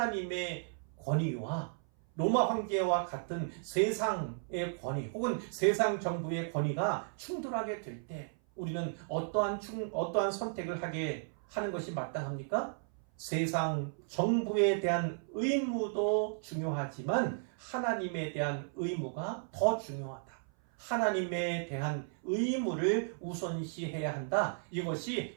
권위와 로마 황제와 같은 세상의 권위 혹은 세상 정부의 권위가 충돌하게 될 때 우리는 어떠한 선택을 하게 하는 것이 마땅합니까? 세상 정부에 대한 의무도 중요하지만 하나님에 대한 의무가 더 중요하다. 하나님에 대한 의무를 우선시해야 한다. 이것이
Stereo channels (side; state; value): left; silent; 55 dB below the other